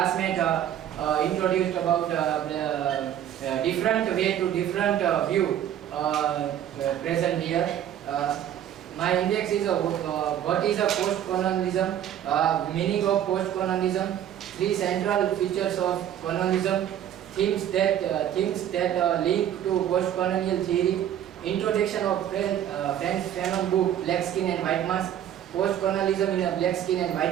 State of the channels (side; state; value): left; quieter; 10.6 dB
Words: introduced about the different way to different view present here. My index is what is a post-colonialism, meaning of post-colonialism, three central features of colonialism, themes that link to post-colonial theory, introduction of French Fanon book Black Skin and White Mask, post-colonialism in a black skin and